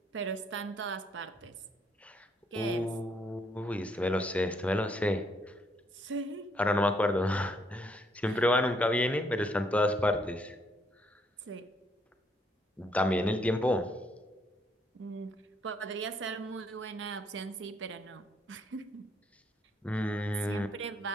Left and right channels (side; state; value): both; normal; correlation 0.70